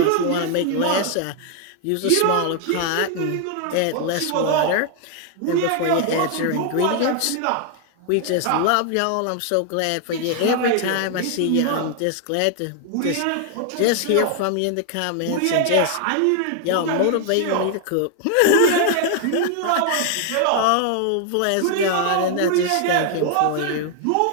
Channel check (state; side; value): different; both; correlation 0.00